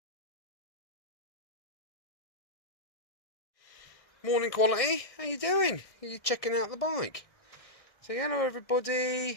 Morning, quality. How you doing? Are you checking out the bike? Say hello,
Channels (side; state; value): right; late; 1.6 ms